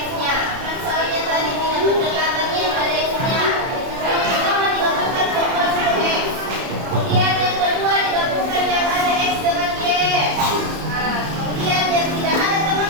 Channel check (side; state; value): left; late; 30 ms